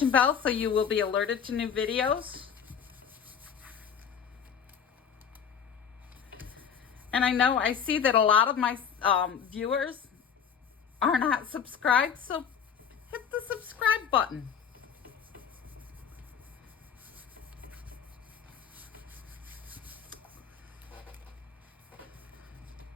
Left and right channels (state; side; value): quieter; right; 7.4 dB